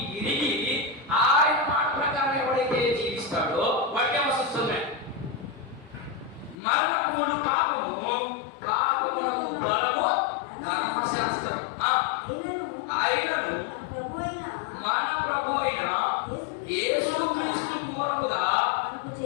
ఎరిగి ఆయన మాట ప్రకారం ఎవరైతే జీవిస్తాడో వాడికి ఏమొస్తుంది? మరణమును పాపము, పాపమునకు బలము ధర్మశాస్త్రం. ఆయనను మన ప్రభు అయిన యేసుక్రీస్తు మూలముగా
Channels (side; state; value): right; drops out; at 6.6 s